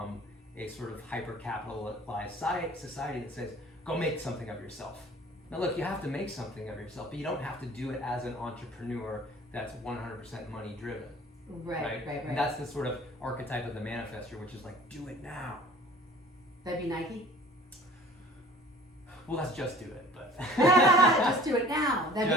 a sort of hyper-capitalized society that says, go make something of yourself. Now look, you have to make something of yourself, but you don't have to do it as an entrepreneur that's 100% money driven. Right. And that's the sort of archetype of the manifestor, which is like, do it now. That'd be Nike? Well, let's just do it, but... Just do it now. That'd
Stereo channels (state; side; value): normal; both; correlation 0.47